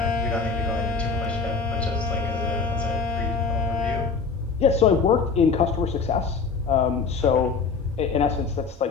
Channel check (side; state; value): right; quieter; 5.0 dB